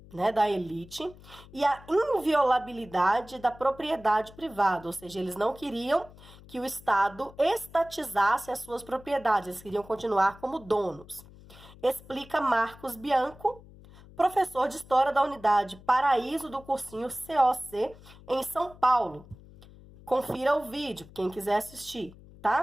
né, da elite e a inviolabilidade da propriedade privada, ou seja, eles não queriam que o Estado estatizasse as suas propriedades, eles queriam continuar como donos. Explica Marcos Bianco, professor de História da Unidade Paraíso do cursinho COC em São Paulo. Confira o vídeo, quem quiser assistir,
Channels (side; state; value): left; noise; hum, 21 dB below the sound